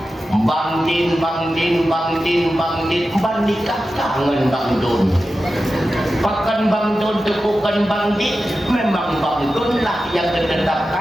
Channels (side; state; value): both; normal; correlation 0.93